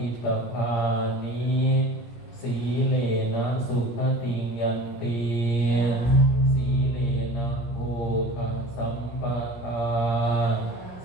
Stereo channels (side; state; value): right; late; 17 ms